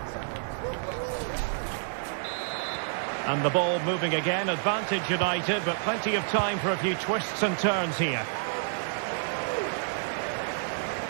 And the ball moving again, advantage United, but plenty of time for a few twists and turns here.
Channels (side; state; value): left; silent; 59 dB below the other